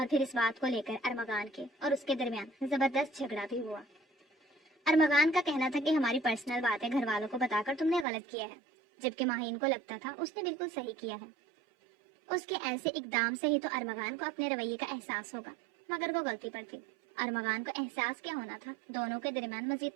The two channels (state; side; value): drops out; left; at 8.1 s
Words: پھر اس بات کو لے کر ارمغان کے اور اس کے درمیان زبردست جھگڑا بھی ہوا۔ ارمغان کا کہنا تھا کہ ہماری پرسنل باتیں گھر والوں کو بتا کر تم نے غلط کیا ہے، جبکہ ماہین کو لگتا تھا اس نے بالکل صحیح کیا ہے۔ اس کے ایسے اقدام سے ہی تو ارمغان کو اپنے رویے کا احساس ہوگا، مگر وہ غلطی پر تھی۔ ارمغان کو احساس کیا ہونا تھا، دونوں کے درمیان